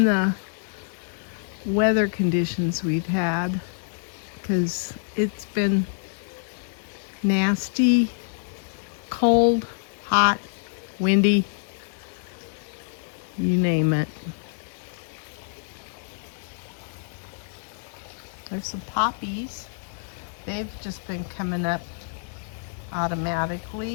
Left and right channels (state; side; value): silent; right; 60 dB below the other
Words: the weather conditions we've had, because it's been nasty, cold, hot, windy, you name it. There's some poppies. They've just been coming up